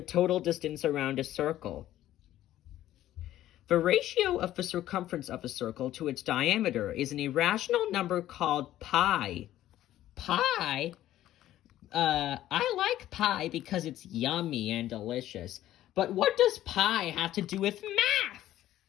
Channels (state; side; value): quieter; right; 13.5 dB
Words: total distance around a circle. The ratio of the circumference of a circle to its diameter is an irrational number called pi. Pi? I like pie because it's yummy and delicious. But what does pi have to do with math?